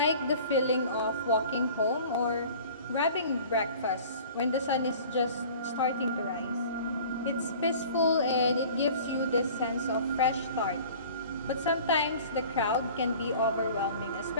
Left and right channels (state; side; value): inverted; both; correlation -0.45